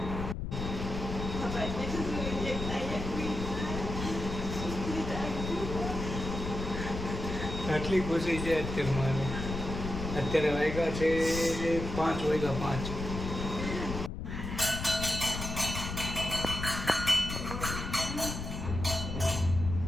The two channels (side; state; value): left; noise; rumble, 5 dB below the sound